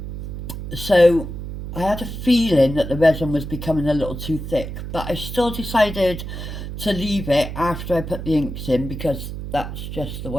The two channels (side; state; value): right; noise; hum, 7 dB below the sound